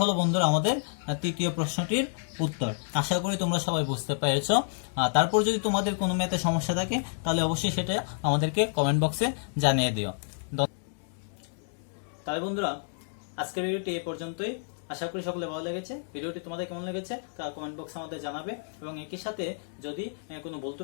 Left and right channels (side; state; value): right; silent; digital silence